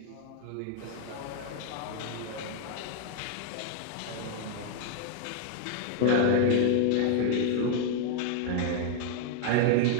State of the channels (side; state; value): both; different; correlation 0.00